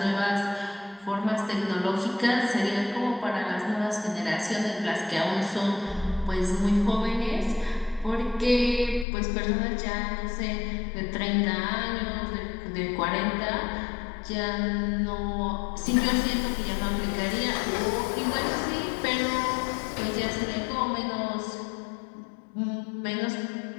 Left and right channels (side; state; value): right; drops out; at 9.1 s